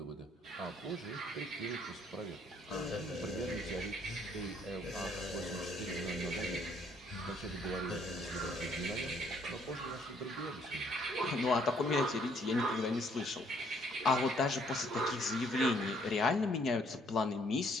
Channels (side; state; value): both; normal; correlation 0.65